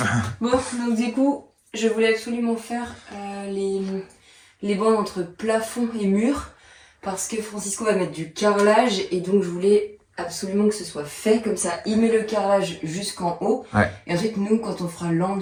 Bon, donc du coup, je voulais absolument faire les bandes entre plafond et mur parce que Francisco va mettre du carrelage et donc je voulais absolument que ce soit fait comme ça. Il met le carrelage jusqu'en haut et ensuite nous, quand on fera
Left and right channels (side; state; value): both; identical; correlation 1.00